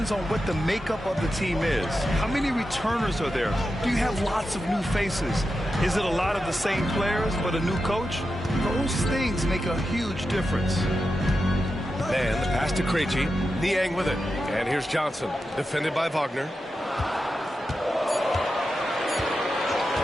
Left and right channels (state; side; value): normal; both; correlation 0.89